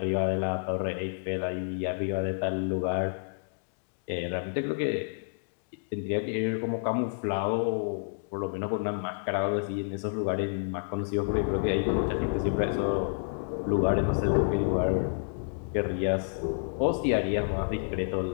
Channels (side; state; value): right; silent; digital silence